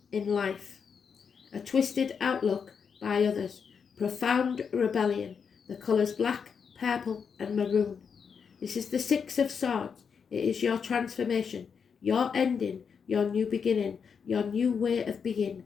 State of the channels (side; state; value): right; quieter; 6.4 dB